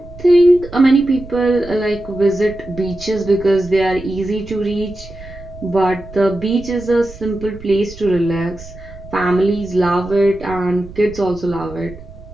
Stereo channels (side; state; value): right; noise; rumble, 16 dB below the sound